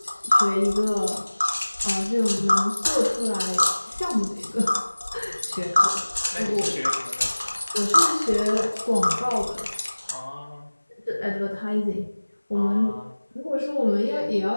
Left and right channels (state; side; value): inverted; both; correlation -1.00